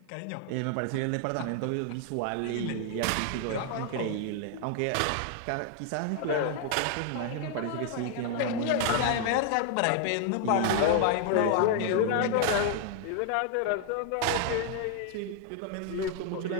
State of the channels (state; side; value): different; both; correlation 0.00